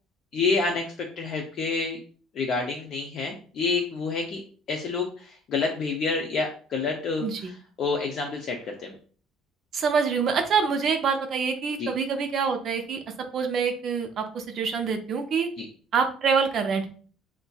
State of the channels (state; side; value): normal; both; correlation 0.53